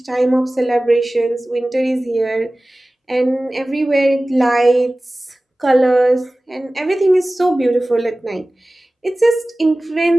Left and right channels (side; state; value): both; normal; correlation 0.97